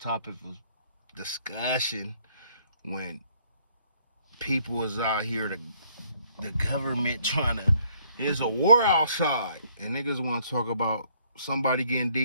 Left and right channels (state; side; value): inverted; both; correlation -0.65